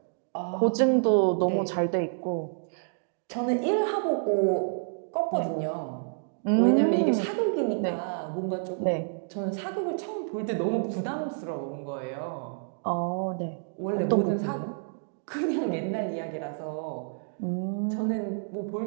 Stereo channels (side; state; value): left; silent; digital silence